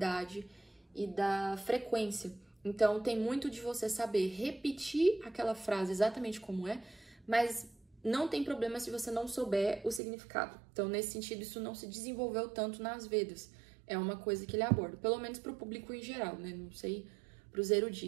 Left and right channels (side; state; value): left; drops out; at 10.0 s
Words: e da frequência. Então, tem muito de você saber repetir aquela frase exatamente como é, mas não tem problema se você não souber o significado. Então, nesse sentido, isso não se desenvolveu tanto nas Vedas. É uma coisa que ele aborda, pelo menos para o público em geral, né? Não sei para os